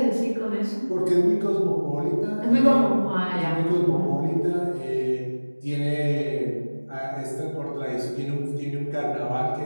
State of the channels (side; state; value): both; inverted; correlation -1.00